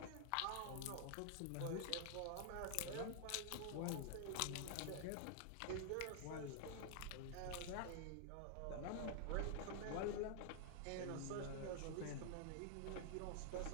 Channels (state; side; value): different; both; correlation 0.00